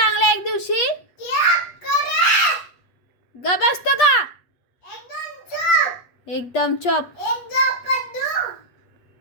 एक दिवशी. ग बसतो का? एकदम चुप.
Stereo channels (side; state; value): right; late; 8.4 ms